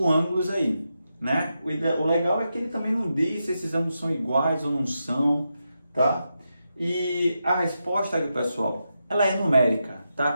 ângulos aí, né? O legal é que ele também não diz se esses ângulos são iguais ou não são, tá? E a resposta, pessoal, ela é numérica, tá?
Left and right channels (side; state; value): both; inverted; correlation -0.87